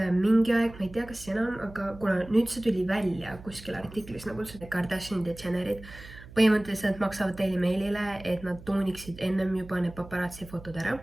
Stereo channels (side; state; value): right; noise; hum, 17 dB below the sound